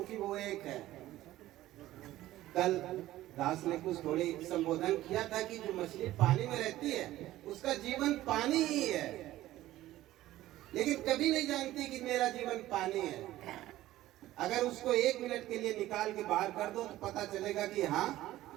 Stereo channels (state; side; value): quieter; left; 15.2 dB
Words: कि वो एक है। कल दास ने कुछ थोड़ी संबोधन किया था कि जो मछली पानी में रहती है उसका जीवन पानी ही है, लेकिन कभी नहीं जानती कि मेरा जीवन पानी है। अगर उसको 1 मिनट के लिए निकाल के बाहर कर दो तो पता चलेगा कि हाँ,